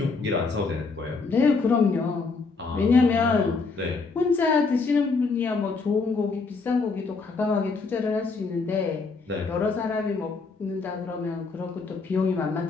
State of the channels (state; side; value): quieter; right; 4.3 dB